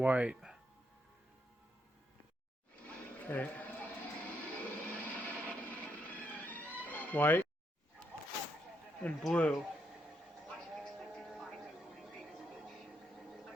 Okay. White and blue.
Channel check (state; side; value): normal; both; correlation 0.78